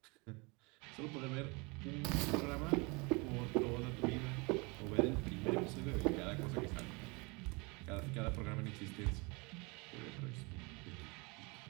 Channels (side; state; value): left; quieter; 28.2 dB